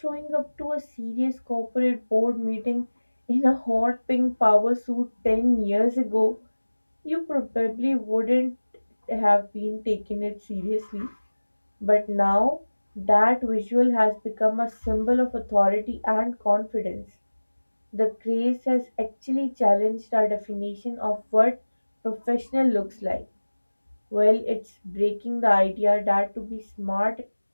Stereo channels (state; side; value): inverted; both; correlation -1.00